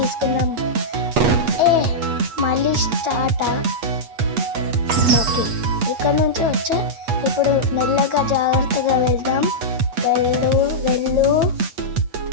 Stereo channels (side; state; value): left; late; 8.3 ms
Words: మళ్ళీ స్టార్ట్. ఓకే, ఇక్కడ నుంచి వచ్చా. ఇప్పుడు మెల్లగా జాగ్రత్తగా వెళ్దాం. వెళ్ళు.